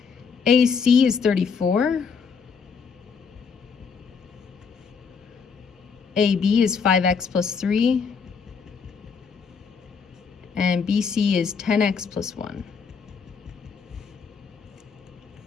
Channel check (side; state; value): right; quieter; 5.8 dB